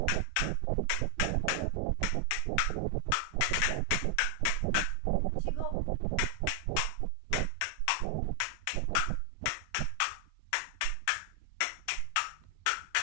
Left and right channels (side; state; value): both; different; correlation 0.00